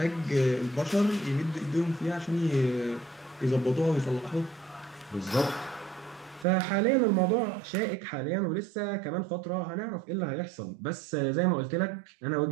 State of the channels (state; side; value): drops out; left; at 6.5 s